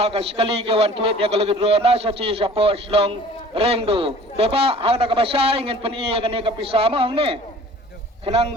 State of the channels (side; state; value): both; normal; correlation 0.47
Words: sekali ke wan tuit ya kalau gedrona sa ci sa po slong rengdo deba hang da kamasay ngin pani ya kani kapisa mo hang ni kenang